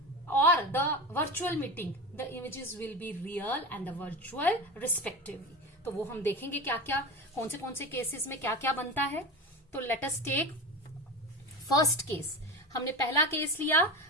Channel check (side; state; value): both; normal; correlation 0.25